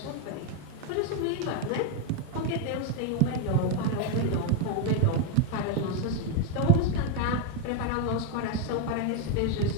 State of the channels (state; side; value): different; both; correlation 0.02